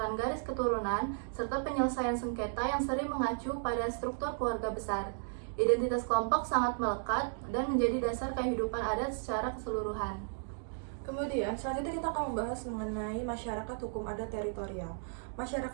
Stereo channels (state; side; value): silent; left; digital silence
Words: garis keturunan, serta penyelesaian sengketa yang sering mengacu pada struktur keluarga besar. Identitas kelompok sangat melekat dan menjadi dasar kehidupan adat secara keseluruhan. Kemudian, selanjutnya kita akan membahas mengenai masyarakat hukum adat teritorial.